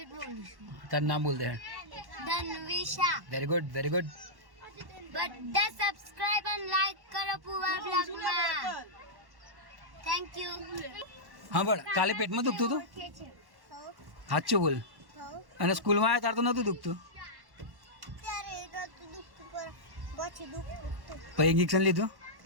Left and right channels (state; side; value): late; left; 1.1 ms